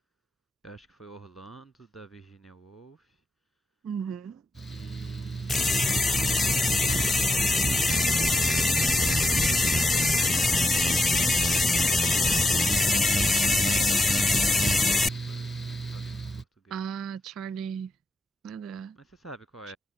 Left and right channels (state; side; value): normal; both; correlation 0.84